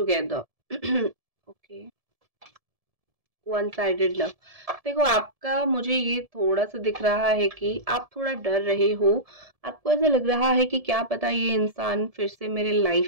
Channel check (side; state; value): left; late; 1.7 ms